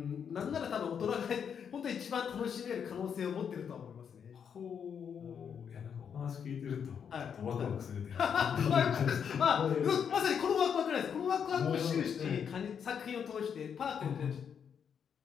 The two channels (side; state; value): right; quieter; 7.5 dB